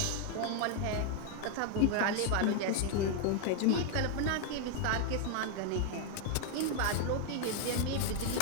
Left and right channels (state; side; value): different; both; correlation 0.00